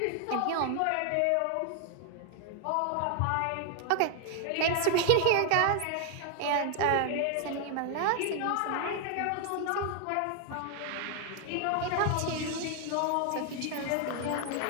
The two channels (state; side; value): different; both; correlation 0.00